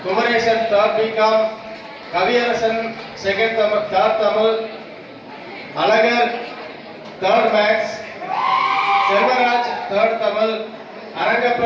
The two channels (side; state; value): both; identical; correlation 1.00